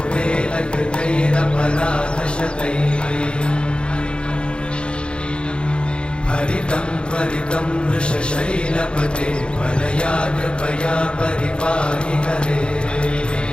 हरितं त्वरितं वृषशैलपते परया कृपया परिपाहि हरे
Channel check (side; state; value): right; late; 0.055 ms